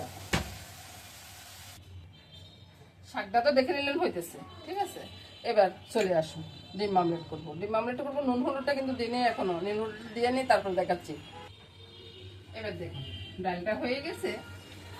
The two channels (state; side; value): identical; both; correlation 1.00